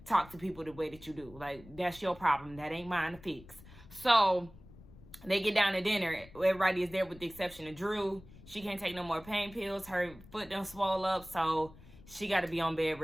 talk to people the way that you do. Like, that's your problem. That ain't mine to fix. So they get down to dinner. Everybody is there with the exception of Drew. She can't take no more pain pills. Her foot done swole up, so she got to be on bed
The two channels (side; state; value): left; noise; rumble, 20 dB below the sound